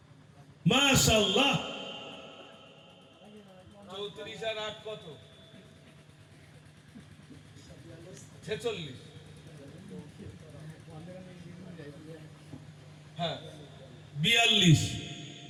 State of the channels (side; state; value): both; identical; correlation 1.00